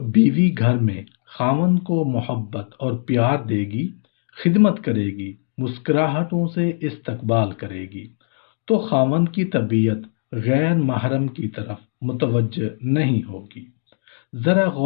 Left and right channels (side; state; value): right; silent; digital silence